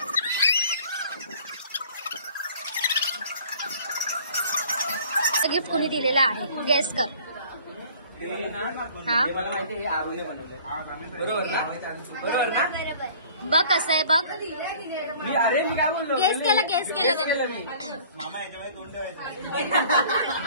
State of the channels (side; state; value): both; inverted; correlation -0.50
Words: गिफ्ट कोणी दिले दिलेला आहे? गेस कर. हा मला माहिती आहे आरोने बनवले. बरोबर ना? बरोबर ना? बघ कसं आहे बघ. मी काय बोललो? गेस केलं त्याने. मामा याच्यामध्ये तोंड